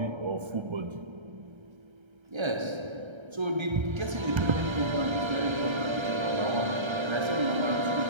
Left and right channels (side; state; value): left; late; 1.3 ms